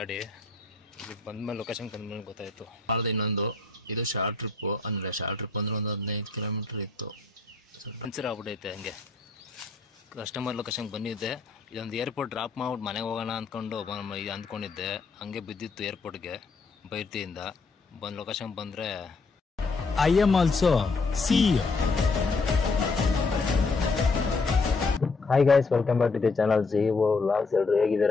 ಬಂದ್ಮೇಲೆ ಲೊಕೇಶನ್ ಬಂದ್ಮೇಲೆ ಗೊತ್ತಾಯ್ತು. ಮಾಡಿದೆ ಇನ್ನೊಂದು ಇದು ಶಾರ್ಟ್ ಟ್ರಿಪ್ ಅಂದ್ರೆ ಒಂದು 15 ಕಿಲೋಮೀಟರ್ ಇತ್ತು. ಪಂಚರ್ ಆಗ್ಬಿಟ್ಟೈತೆ. ಹಂಗೆ ಕಸ್ಟಮರ್ ಲೊಕೇಶನ್ ಬಂದಿದ್ದೆ. ಇದೊಂದು ಏರ್ಪೋರ್ಟ್ ಡ್ರಾಪ್ ಮಾಡ್ಬಿಟ್ಟು ಮನೆಗೆ ಹೋಗೋಣ ಅಂದ್ಕೊಂಡು ಅಂದ್ಕೊಂಡಿದ್ದೆ. ಹಂಗೆ ಬಿದ್ದಿತ್ತು ಏರ್ಪೋರ್ಟ್ಗೆ ಬೈರ್ತಿಯಿಂದ. ಬಂದು ಲೊಕೇಶನ್ ಬಂದರೆ I am also CEO. Hi guys, welcome back to the channel CEO vlogs. ಎಲ್ಲರೂ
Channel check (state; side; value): quieter; right; 4.0 dB